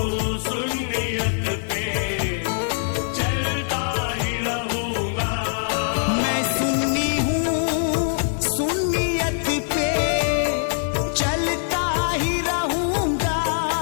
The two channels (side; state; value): right; silent; digital silence